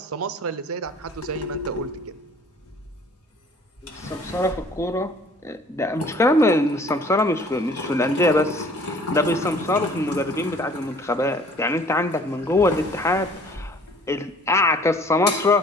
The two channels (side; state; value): both; normal; correlation 0.53